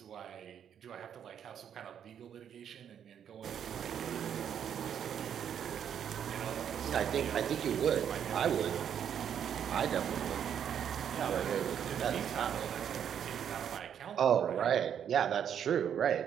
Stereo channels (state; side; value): quieter; left; 8.8 dB